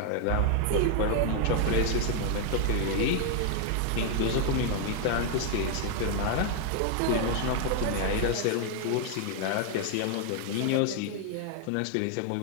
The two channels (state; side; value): different; both; correlation 0.00